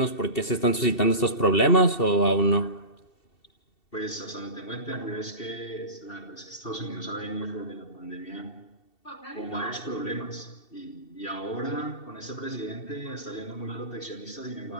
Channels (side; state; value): right; late; 2.7 ms